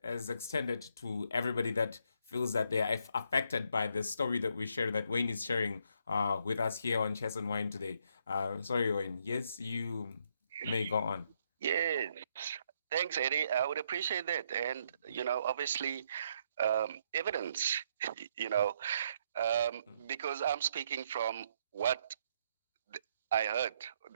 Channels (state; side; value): inverted; both; correlation -0.73